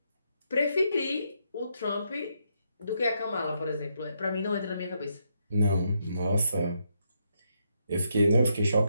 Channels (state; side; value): inverted; both; correlation -0.78